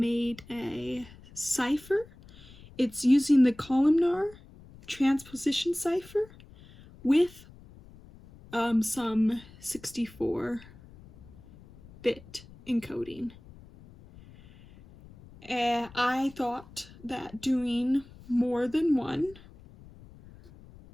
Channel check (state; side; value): noise; left; rumble, 21 dB below the sound